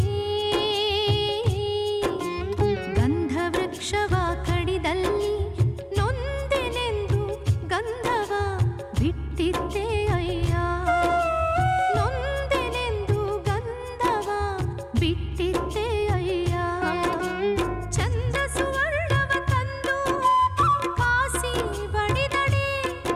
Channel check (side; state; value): both; identical; correlation 1.00